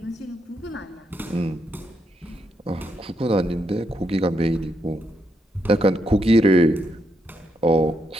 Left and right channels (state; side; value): normal; both; correlation 0.79